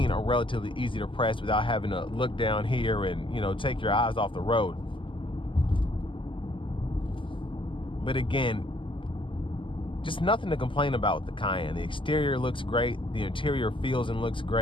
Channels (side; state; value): right; late; 0.25 ms